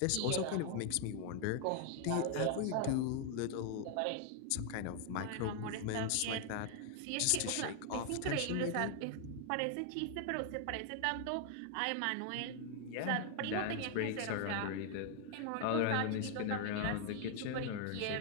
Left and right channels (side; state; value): both; different; correlation 0.00